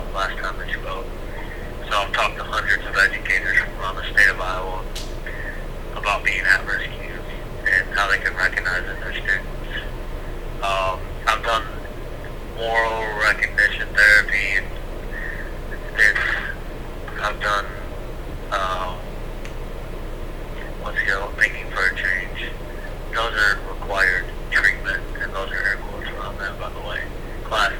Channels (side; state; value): both; identical; correlation 1.00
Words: last time that you spoke. So I've talked to hundreds of educators from around the state of Iowa about being at-risk youth and how they can recognize in their students. I've done moral recognition therapy. I've done thinking for a change. Those are required treatment, and those are air quotes around that, by the way. Classes.